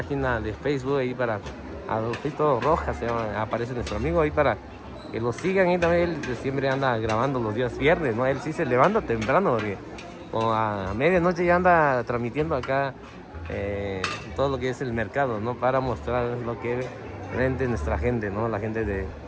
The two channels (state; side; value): identical; both; correlation 1.00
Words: de Facebook, ahí para Adolfito Rojas, se llama, aparece nuestro amigo ahí para que lo sigan. Y también él siempre anda grabando los días viernes, ¿no? Él sí se levanta temprano, porque como a medianoche ya anda transmitiendo acá todo lo que es el mercado, ¿no? Para mostrar lo que vende nuestra gente, ¿no? La gente de